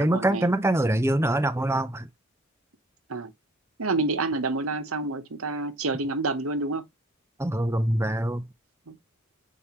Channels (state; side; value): normal; both; correlation 0.57